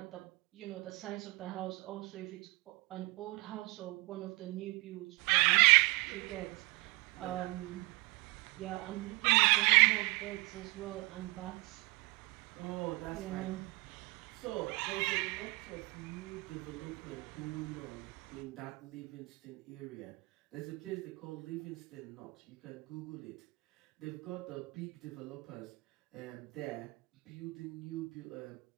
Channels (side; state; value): left; quieter; 24.4 dB